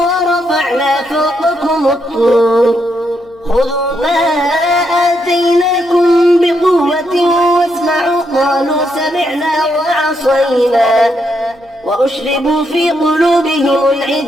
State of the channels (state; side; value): noise; right; hum, 30 dB below the sound